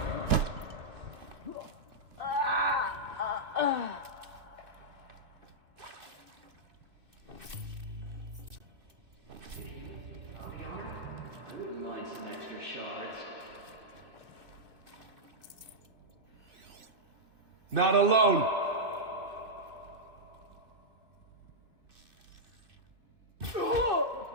I wouldn't mind some extra shards. Not alone. What's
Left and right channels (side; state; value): left; late; 2.6 ms